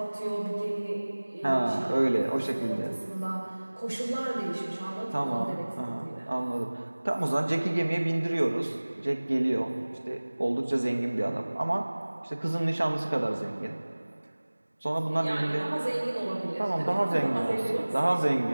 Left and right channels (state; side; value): inverted; both; correlation -1.00